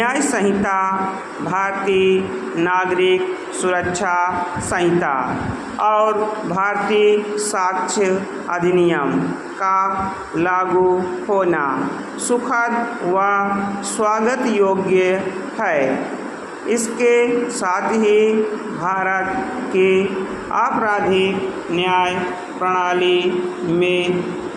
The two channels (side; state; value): both; identical; correlation 1.00